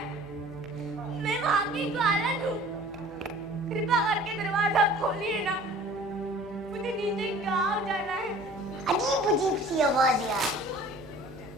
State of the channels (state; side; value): noise; left; hum, 21 dB below the sound